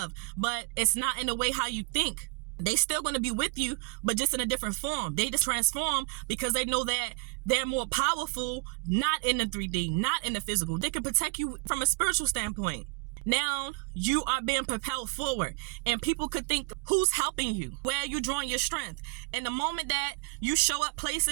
but it's not in the way how you think. They still going to be with you, but just in a different form. They just transform because they know that they're more powerful, not in the 3D, not in the physical. They can protect you from a spiritual standpoint. Now you are being propelled forward, and people could think, who's helping you? Where are you drawing your strength? And the moment that you show up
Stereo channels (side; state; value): left; quieter; 31.9 dB